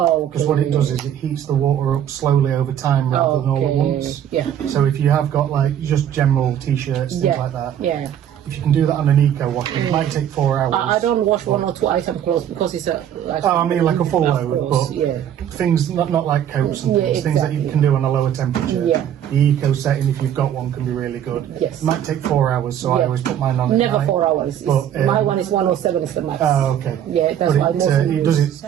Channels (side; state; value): left; quieter; 10.1 dB